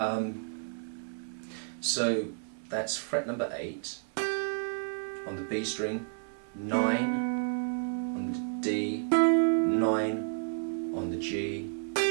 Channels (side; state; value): left; silent; 57 dB below the other